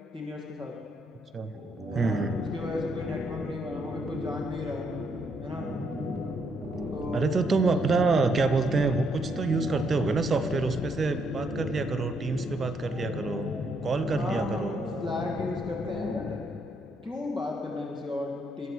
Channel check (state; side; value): normal; both; correlation 0.74